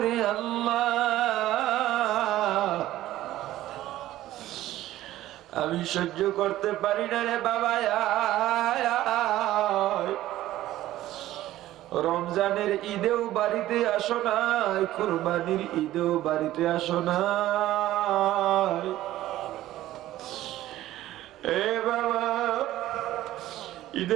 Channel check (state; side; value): quieter; left; 14.6 dB